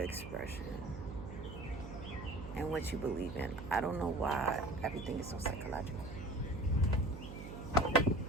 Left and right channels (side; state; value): right; noise; hum, 10 dB below the sound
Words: expression and what you believe in. I don't know why everything is so psychological. But